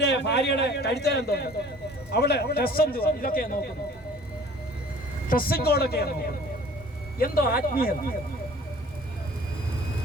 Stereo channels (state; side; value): normal; both; correlation 0.49